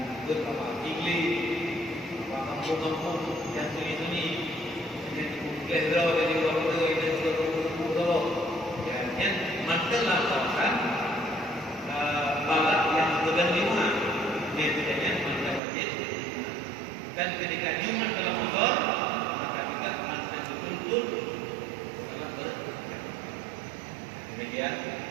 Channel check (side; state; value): left; drops out; at 15.6 s